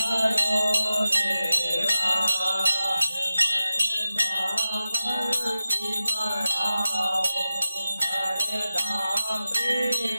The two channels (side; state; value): both; inverted; correlation -0.94